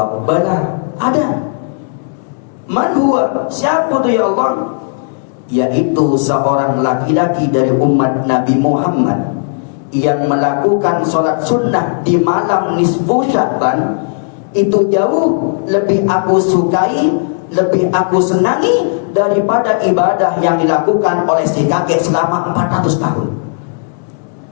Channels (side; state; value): right; silent; digital silence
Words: bala, ada. Man huwa, siapa itu ya Allah? Yaitu seorang laki-laki dari umat Nabi Muhammad yang melakukan sholat sunnah di malam nisfu Sya'ban. Itu jauh lebih aku sukai, lebih aku senangi daripada ibadah yang dilakukan oleh si kakek selama 400 tahun.